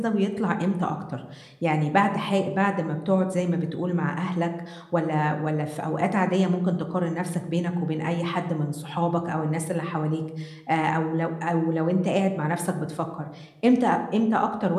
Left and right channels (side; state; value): both; identical; correlation 1.00